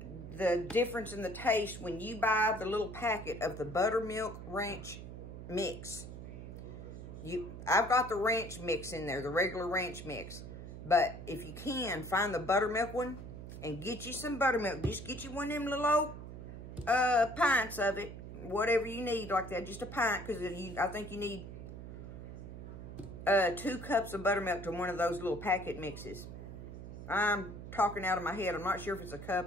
difference in the taste when you buy the little packet of the buttermilk ranch mix. I've got the ranch mix in there, the regular ranch mix. But if you can, find the buttermilk one and get you some buttermilk. Just get you one of them little old pints of it. Whatever you need like that. Just a pint, because I think you need 2 cups of buttermilk to one of those little packet mixes. I'm talking out of my head. I'm not sure if it's a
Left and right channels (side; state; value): right; noise; hum, 11 dB below the sound